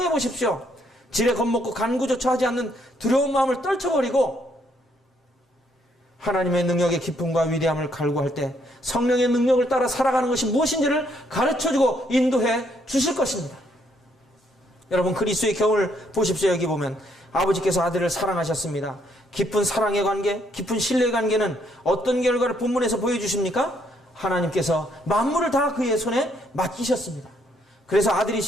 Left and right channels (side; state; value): both; normal; correlation 0.71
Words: 보십시오. 지레 겁먹고 간구조차 하지 않는 두려운 마음을 떨쳐버리고 하나님의 능력의 기쁨과 위대함을 갈구할 때 성령의 능력을 따라 살아가는 것이 무엇인지를 가르쳐주고 인도해 주실 것입니다. 여러분, 그리스도의 경우를 보십시오. 여기 보면 아버지께서 아들을 사랑하셨습니다. 깊은 사랑의 관계, 깊은 신뢰의 관계는 어떤 결과를 본문에서 보여주십니까? 하나님께서 만물을 다 그의 손에 맡기셨습니다. 그래서